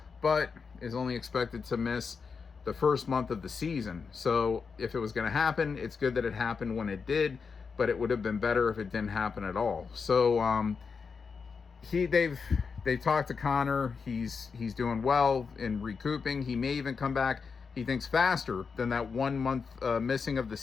but is only expected to miss the first month of the season. So if it was going to happen, it's good that it happened when it did, but it would have been better if it didn't happen at all. So they've talked to Connor. He's doing well in recouping. He may even come back, he thinks, faster than that 1 month missing of the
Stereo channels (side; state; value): right; quieter; 5.4 dB